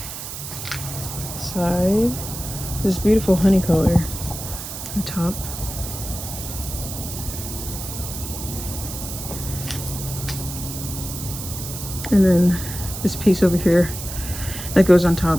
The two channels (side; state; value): right; noise; hiss, 8 dB below the sound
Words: side, this beautiful honey color on top. And then this piece over here that goes on